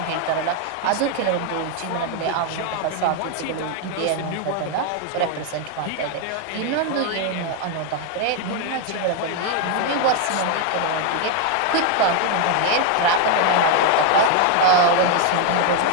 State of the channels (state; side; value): different; both; correlation 0.01